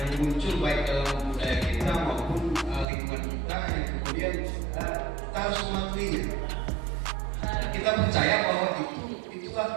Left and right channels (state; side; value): drops out; left; at 2.9 s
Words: muncul baik dalam budaya kita maupun lingkungan kita yang kemudian kita harus mematuhinya. Kita percaya bahwa itulah